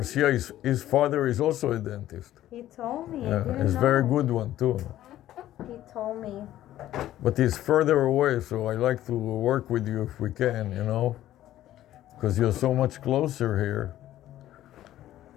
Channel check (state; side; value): quieter; right; 13.4 dB